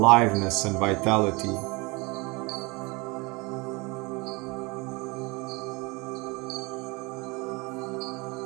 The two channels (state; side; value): quieter; left; 26.6 dB